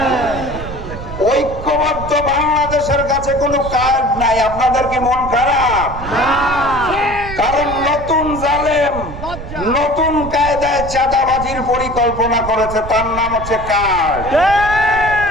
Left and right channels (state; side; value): noise; right; rumble, 10 dB below the sound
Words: ঐক্যবদ্ধ বাংলাদেশের কাছে কোনো কার্ড নাই। আপনাদের কি মন খারাপ? কারণ নতুন জালেম নতুন কায়দায় চাঁদাবাজির পরিকল্পনা করেছে, তার নাম হচ্ছে কার্ড।